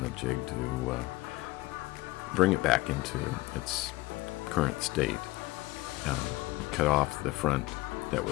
the jig to bring it back into its current state. Cut off the front that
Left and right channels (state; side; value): quieter; right; 20.5 dB